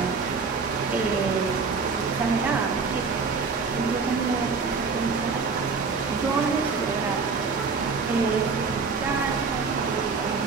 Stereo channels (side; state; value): left; quieter; 4.8 dB